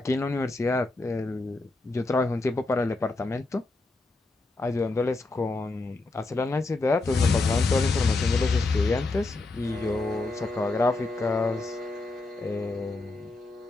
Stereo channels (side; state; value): right; quieter; 3.2 dB